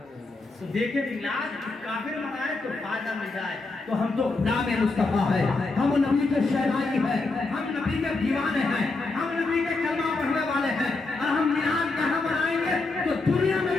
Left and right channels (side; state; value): right; quieter; 3.5 dB